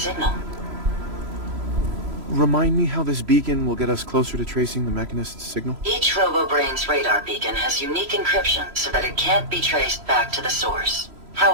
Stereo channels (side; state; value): left; late; 3.0 ms